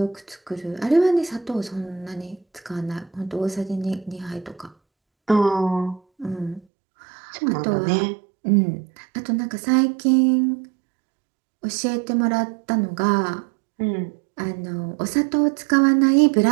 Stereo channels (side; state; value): left; drops out; at 6.6 s